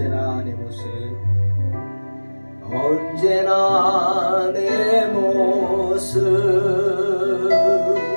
언제나 내 모습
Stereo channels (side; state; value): both; inverted; correlation -1.00